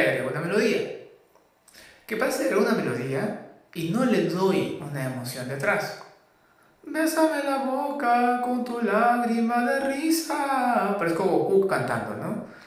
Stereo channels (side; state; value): both; identical; correlation 1.00